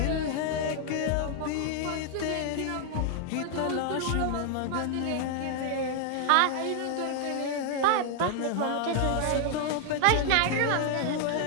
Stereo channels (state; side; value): different; both; correlation 0.00